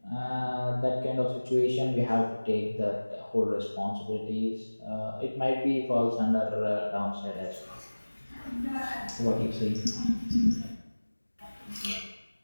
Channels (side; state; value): both; inverted; correlation -1.00